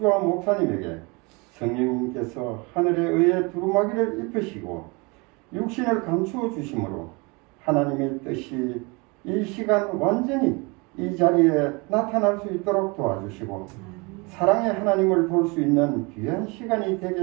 목사님에게 성령님께서 하늘에 의해 두루마기를 입히시고 육신을 감추어 주심으로 하나님의 뜻이 이 시간 완전히 이 자리에 나타날 수 있도록 도와주시고 사랑의 하나님을 볼 수 있는 귀한 시간이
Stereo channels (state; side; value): quieter; left; 28.3 dB